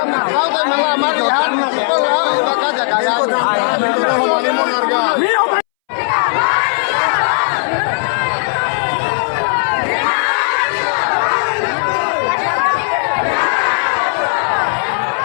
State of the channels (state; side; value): silent; right; 67 dB below the other